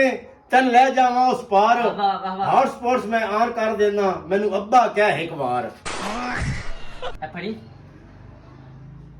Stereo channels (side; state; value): both; identical; correlation 1.00